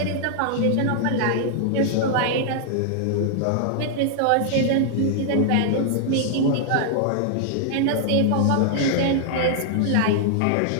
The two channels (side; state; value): both; different; correlation -0.01